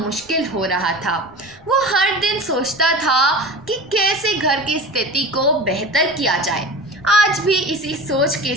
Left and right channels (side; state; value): left; noise; rumble, 28 dB below the sound